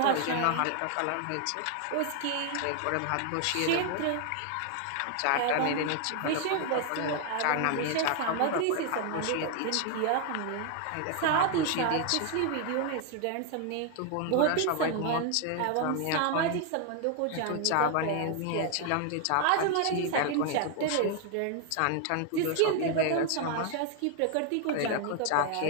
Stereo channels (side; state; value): both; different; correlation 0.00